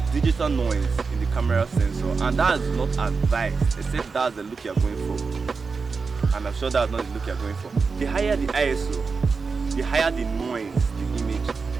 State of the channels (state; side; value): quieter; left; 4.8 dB